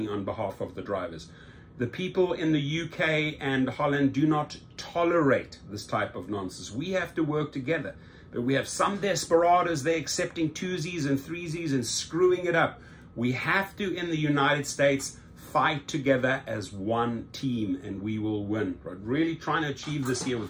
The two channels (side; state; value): both; identical; correlation 1.00